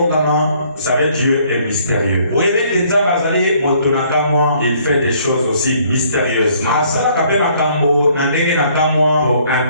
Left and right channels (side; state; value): both; inverted; correlation -0.63